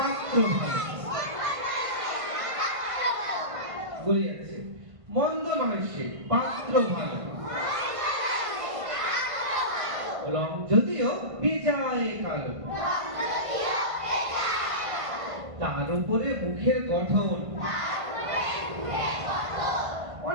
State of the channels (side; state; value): left; late; 1.5 ms